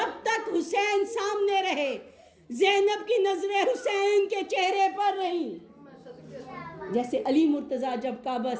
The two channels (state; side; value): identical; both; correlation 1.00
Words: تک حسین سامنے رہے زینب کی نظریں حسین کے چہرے پر رہیں۔ جیسے علی مرتضیٰ جب کعبہ